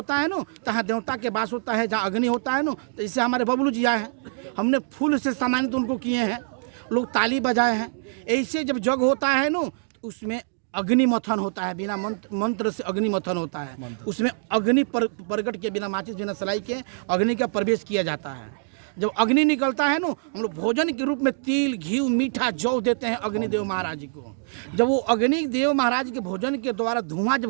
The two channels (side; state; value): left; silent; digital silence